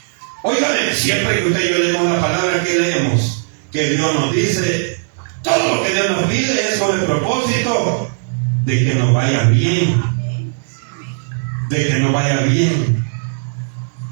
Óigame, siempre que usted y yo leemos la palabra que leemos, que Dios nos dice, todo lo que Dios nos pide es con el propósito de que nos vaya bien. De que nos vaya bien.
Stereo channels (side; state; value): left; silent; digital silence